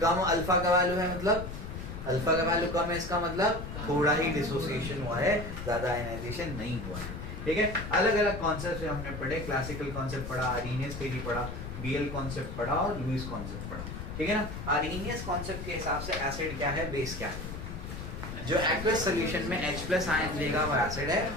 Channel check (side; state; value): left; noise; rumble, 8 dB below the sound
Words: कम अल्फा का वैल्यू है मतलब अल्फा का वैल्यू कम है, इसका मतलब थोड़ा ही डिसोसिएशन हुआ है, ज्यादा आयनाइजेशन नहीं हुआ है, ठीक है? अलग अलग कॉन्सेप्ट हमने पढ़े, क्लासिकल कॉन्सेप्ट पढ़ा, आर्हेनियस थ्योरी पढ़ा, बीएल कॉन्सेप्ट पढ़ा और लुईस कॉन्सेप्ट पढ़ा, ठीक है ना? आर्हेनियस कॉन्सेप्ट के हिसाब से एसिड क्या है? बेस क्या है? जो एक्वस सॉल्यूशन में H+ आयन देगा वो एसिड है,